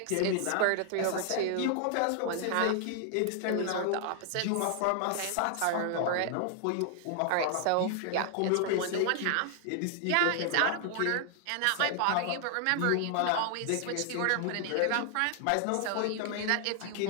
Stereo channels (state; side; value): different; both; correlation 0.00